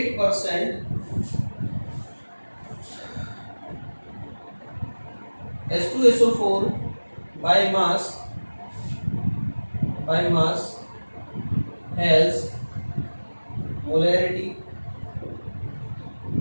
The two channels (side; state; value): both; inverted; correlation -1.00